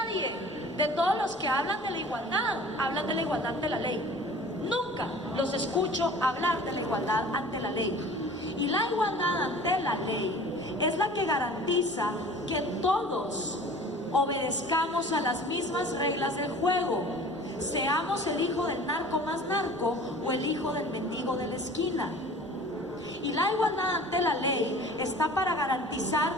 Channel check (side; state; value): right; noise; rumble, 28 dB below the sound